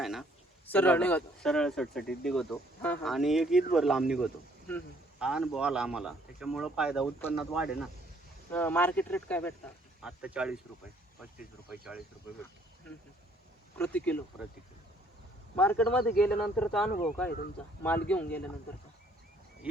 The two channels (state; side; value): normal; both; correlation 0.63